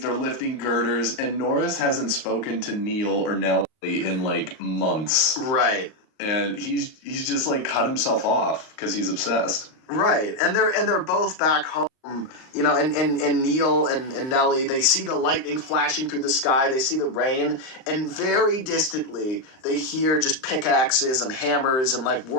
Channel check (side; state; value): right; late; 38 ms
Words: they're lifting girders, and Norris hasn't spoken to Neil or Nelly in, like, months. Right. And he's just, like, cut himself off because he's obsessed. Right. And they're both back home. And Neil and Nelly, they see the lightning flashing through the sky, they see the rain, and very distantly they hear just pickaxes and hammers and, like,